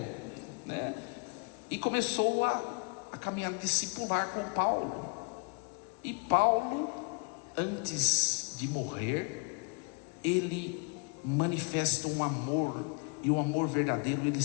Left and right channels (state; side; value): quieter; right; 34.7 dB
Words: né? E começou a caminhar discipular com Paulo. E Paulo, antes de morrer, ele manifesta um amor, e o amor verdadeiro, ele